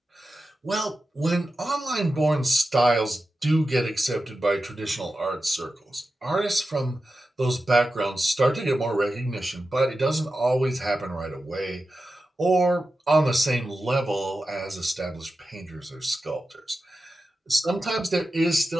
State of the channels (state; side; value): normal; both; correlation 0.92